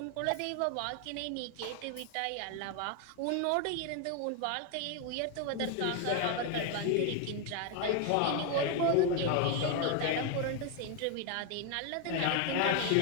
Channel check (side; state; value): both; different; correlation 0.01